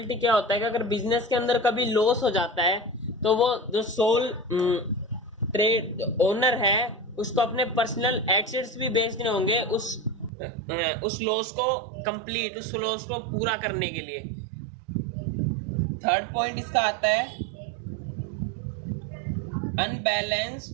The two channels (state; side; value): drops out; left; at 10.3 s